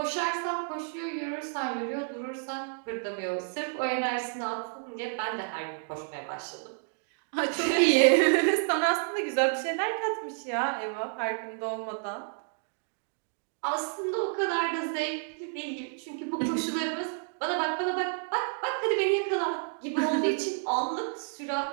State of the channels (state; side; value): silent; left; 58 dB below the other